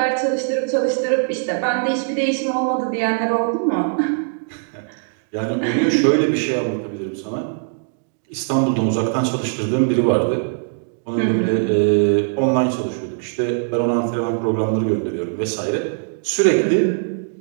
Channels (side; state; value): left; silent; digital silence